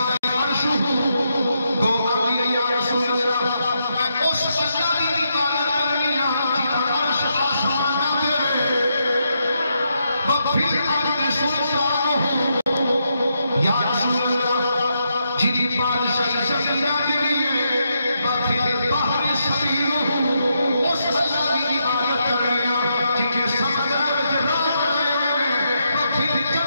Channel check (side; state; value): both; inverted; correlation -0.81